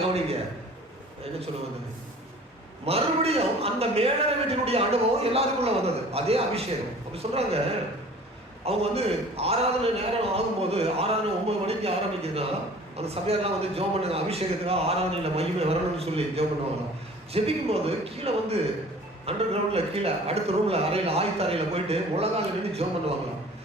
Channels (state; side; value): normal; both; correlation 0.47